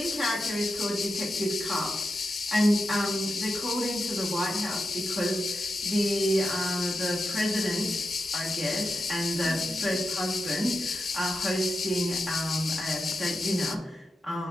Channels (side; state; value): both; normal; correlation 0.89